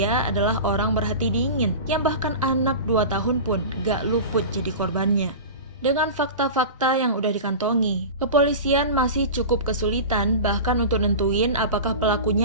adalah orang berhati dingin yang bahkan anak 2 tahun pun gak luput jadi korbannya. Dengan fakta-fakta yang udah dikantongi, kepolisian masih cukup kesulitan bahkan untuk nentuin apakah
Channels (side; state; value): both; inverted; correlation -0.30